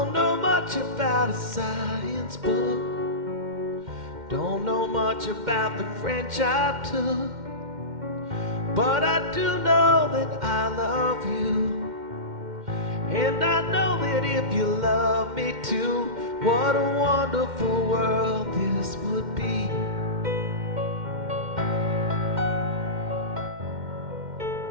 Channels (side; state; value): left; late; 2.1 ms